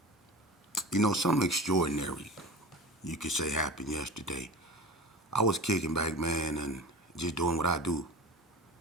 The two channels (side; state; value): both; normal; correlation 0.33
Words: something extraordinary you could say happened yesterday. I was kicking back, man, and just doing what I do,